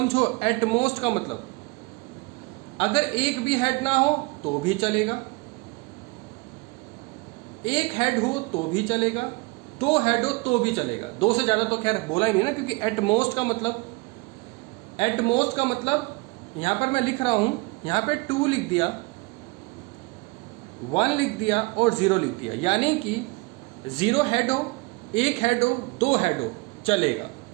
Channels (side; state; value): left; quieter; 26.5 dB